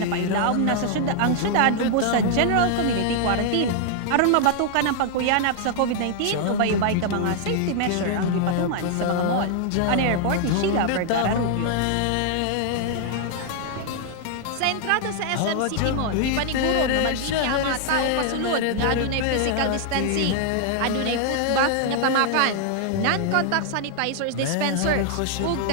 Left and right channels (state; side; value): different; both; correlation 0.00